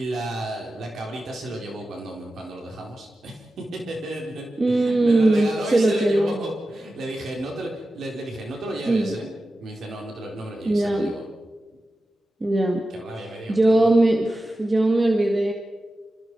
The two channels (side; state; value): both; normal; correlation 0.93